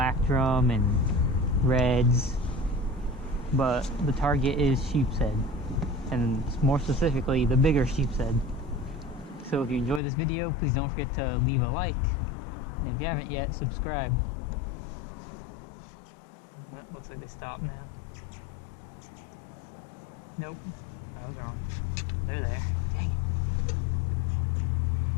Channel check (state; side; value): drops out; right; at 10.0 s